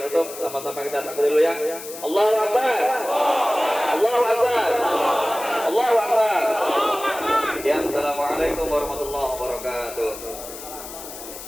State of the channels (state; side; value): noise; left; hiss, 12 dB below the sound